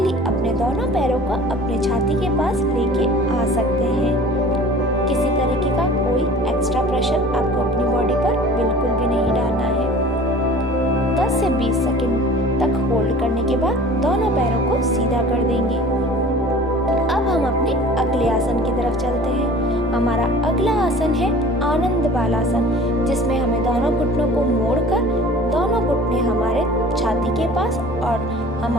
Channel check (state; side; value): noise; left; rumble, 26 dB below the sound